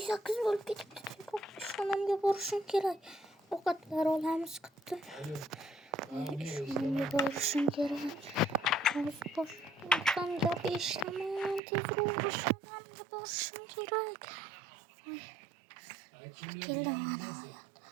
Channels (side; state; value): left; drops out; at 11.6 s